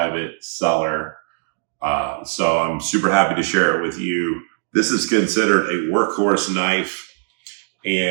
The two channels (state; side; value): silent; left; digital silence